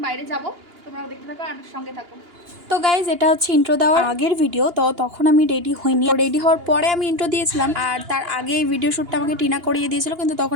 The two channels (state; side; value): late; left; 2.9 ms